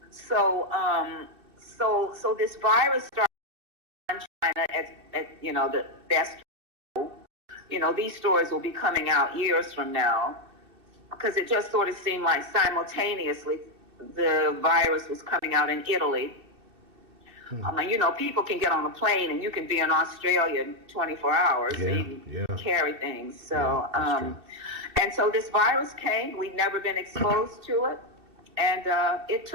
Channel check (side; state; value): left; late; 2.7 ms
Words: So, so this virus started in China at the best. These stories will be coming out years from now, because it just sort of seemed like simultaneously the virus was coming out in Italy. People can get on a plane and you can be in Australia in 24 hours and carry things. So, and so this virus came. We'd never been exposed to it, and it